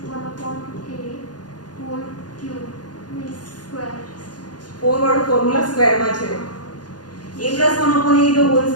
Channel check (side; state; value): right; late; 0.69 ms